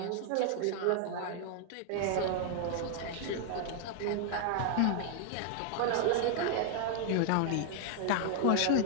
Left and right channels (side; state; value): both; different; correlation 0.00